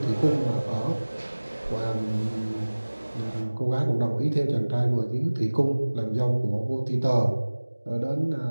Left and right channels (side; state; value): both; inverted; correlation -1.00